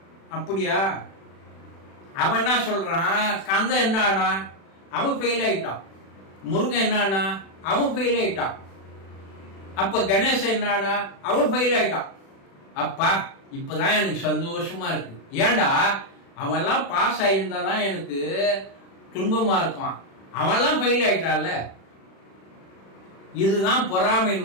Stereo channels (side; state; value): right; late; 36 ms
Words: அப்படியா? அவன் என்ன சொல்றான், கந்தன் என்ன ஆனா, அவன் ஃபெயில் ஆயிட்டான். முருகன் என்ன ஆனா, அவன் ஃபெயில் ஆயிட்டான். அப்ப கணேசன் என்ன ஆனா, அவன் ஃபெயில் ஆயிட்டான். அப்பா இப்பதான் எனக்கு சந்தோஷமா இருக்கு. ஏண்டா, அவெல்லாம் பாஸ் ஆயிருந்தாதான் எனக்கு துன்பமா இருக்கும், அவெல்லாம் ஃபெயில் ஆயிட்டான்ல. இதுதான்